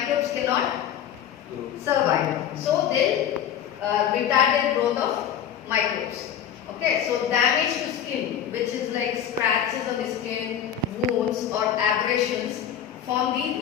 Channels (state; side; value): quieter; right; 9.3 dB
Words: cannot survive. So they retarded growth of microbes. Okay, so damage to skin, which is like scratches on the skin, wounds or abrasions, form